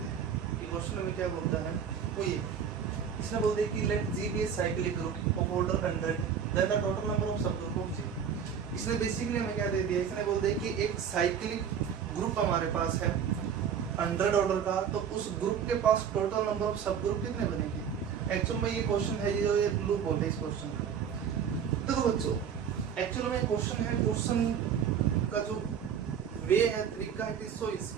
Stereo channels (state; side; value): quieter; left; 7.7 dB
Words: हैं। ये क्वेश्चन में क्या बोलता है, वो ये इसने बोलते हैं कि let G be cyclic group of order 100 then the total number of subgroup of G. इसने बेसिकली हमें क्या दे दिया, इसने बोल दिया कि एक साइक्लिक ग्रुप हमारे पास है 100 ऑर्डर का, तो उस ग्रुप के पास टोटल नंबर ऑफ सब ग्रुप कितने बनेंगे। एक्चुअल में ये क्वेश्चन है, ये जो ये लूप बोलते हैं इस क्वेश्चन का। देखो बच्चों, एक्चुअल में क्वेश्चन है, क्वेश्चन का जो वे है, तरीका है, सो